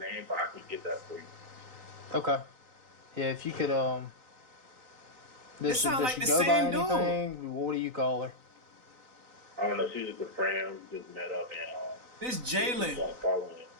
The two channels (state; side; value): late; left; 4.0 ms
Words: but I can get that for you. Okay. Yeah, if you could It sound like she the go by same dude. anything? What do you call her? I don't know. She's just a friend. We just met up and this Jalen following